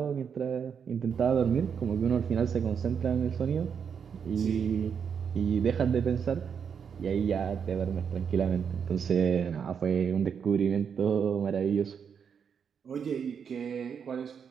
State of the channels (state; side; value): quieter; left; 7.0 dB